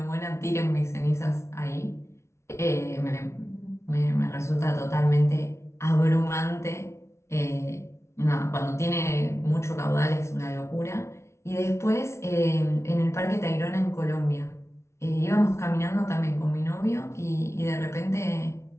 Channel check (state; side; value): late; right; 0.13 ms